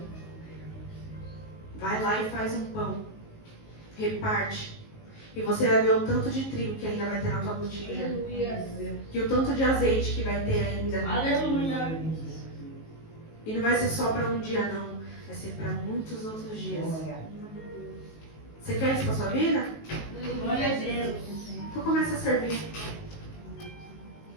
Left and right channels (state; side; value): late; right; 19 ms